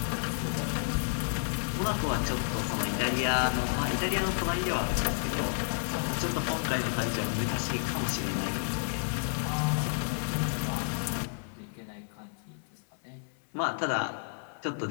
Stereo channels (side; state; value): right; silent; 57 dB below the other